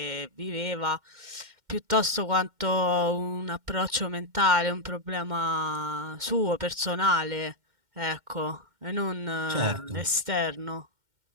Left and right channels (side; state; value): left; late; 2.1 ms